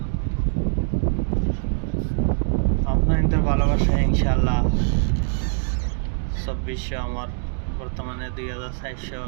আপনাদের ভালোবাসা ইনশাল্লাহ 2400 আমার বর্তমানে 2400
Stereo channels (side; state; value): left; silent; digital silence